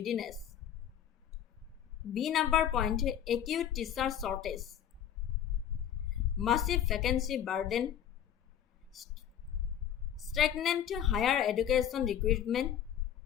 B number point, acute teacher shortage, massive vacancy burden, stagnant higher education recruitment,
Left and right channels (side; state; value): right; quieter; 9.9 dB